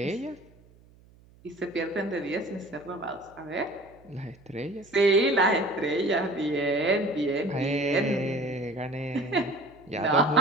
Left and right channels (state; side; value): noise; right; hum, 27 dB below the sound